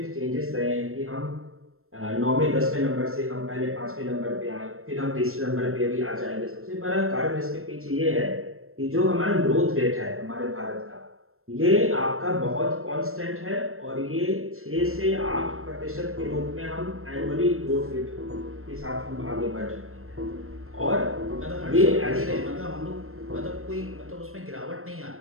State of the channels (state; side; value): late; left; 0.62 ms